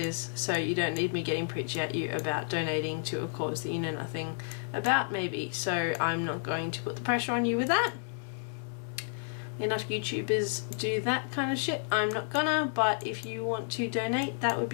so you don't need me getting preachy at you about donating to a cause that you know nothing about, maybe. So I'm not going to put the pressure on you with that. Enough YouTubers do that kind of shit. I'm not gonna, but if you want to donate, that would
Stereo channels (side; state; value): right; silent; digital silence